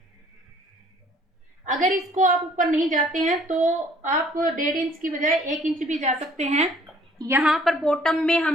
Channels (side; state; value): both; normal; correlation 0.58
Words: अगर इसको आप ऊपर नहीं जाते हैं तो आप 1.5 इंच की बजाय 1 इंच भी जा सकते हैं। यहाँ पर बॉटम में